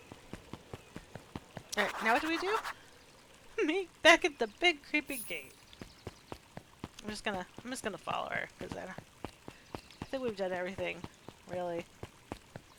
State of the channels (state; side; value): identical; both; correlation 1.00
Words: Alright, now what do we do? Meet back at the big creepy gate. I'm just gonna follow her, because I think we've done everything, really.